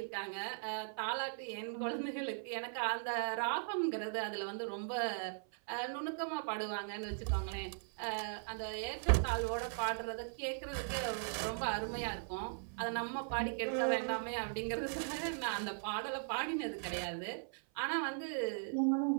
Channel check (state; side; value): silent; left; 52 dB below the other